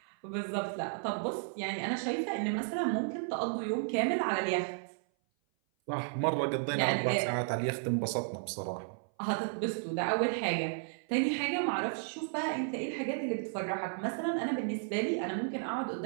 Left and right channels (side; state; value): left; silent; 55 dB below the other